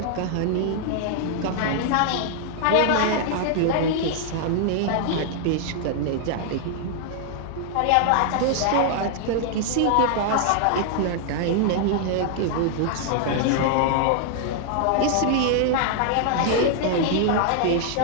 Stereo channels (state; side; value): different; both; correlation 0.00